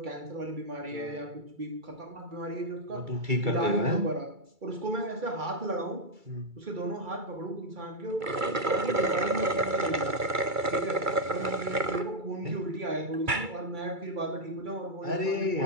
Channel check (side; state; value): left; late; 2.3 ms